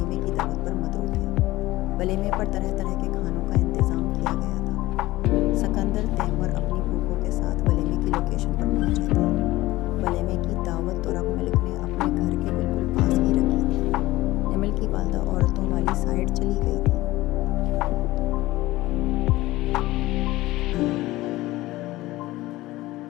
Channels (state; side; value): quieter; right; 18.0 dB